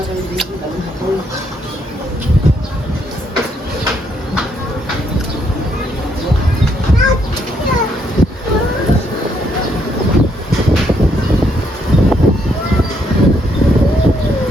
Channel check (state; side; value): normal; both; correlation 0.73